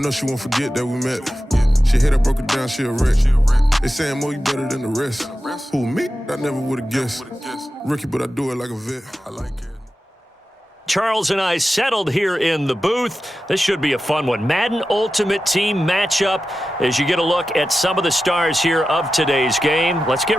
she won't forget that we met. She hit, I broke it down, she a wreck. They saying, Mo, you better than the rest. Who, me? I never would've guessed. Rookie, but I do it like a vet. I like it. Charles and I settled here in the booth. This should be a fun one. Madden Ultimate Team matchup as you get a look at some of the stars here of today's game. Let's get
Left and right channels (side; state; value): both; normal; correlation 0.93